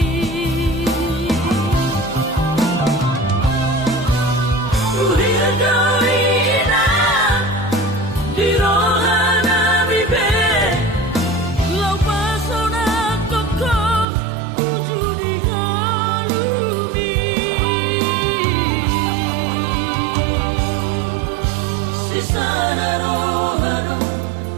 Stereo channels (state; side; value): drops out; left; at 14.1 s